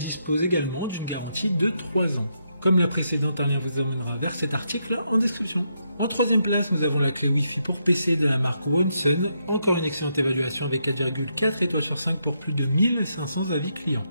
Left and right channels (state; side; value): inverted; both; correlation -0.79